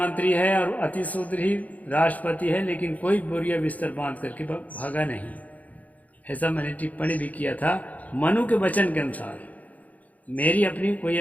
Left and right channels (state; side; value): late; right; 0.075 ms